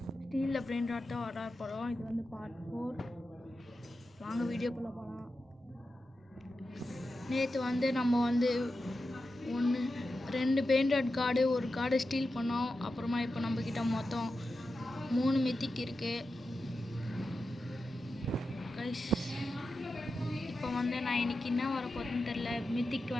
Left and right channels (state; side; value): normal; both; correlation 0.91